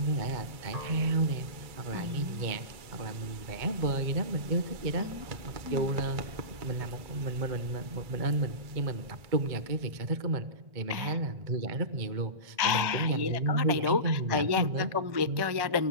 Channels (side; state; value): left; late; 2.2 ms